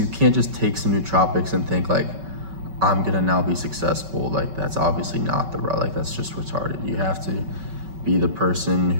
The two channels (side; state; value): left; late; 5.2 ms